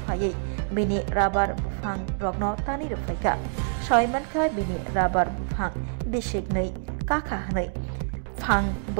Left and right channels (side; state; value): left; silent; digital silence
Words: फायै बिनि राबार बुफां रग्न तानै रफाइगा सयमानका बिनि राबार बुफां बिसिगनै काका हनै फां